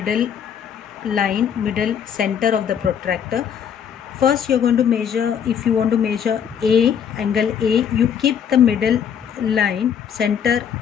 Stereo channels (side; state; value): right; quieter; 8.1 dB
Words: line, middle center of the protractor. First you are going to measure, if you want to measure A, angle A, you keep the middle line center